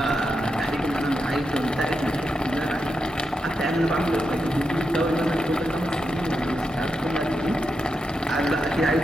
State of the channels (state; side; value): normal; both; correlation 0.86